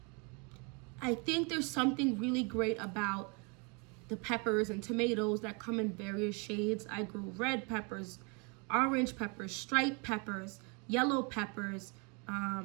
I think there's something really great about the peppers and tomatoes that come in various shades. I grew red peppers, orange peppers, striped peppers, yellow peppers,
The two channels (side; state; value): left; quieter; 32.5 dB